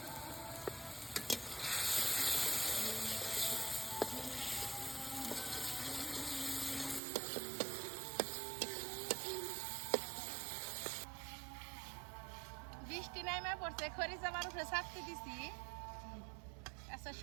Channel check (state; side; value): drops out; left; at 7.0 s